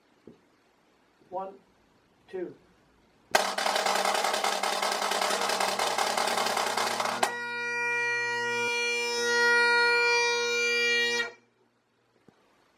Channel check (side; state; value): both; identical; correlation 1.00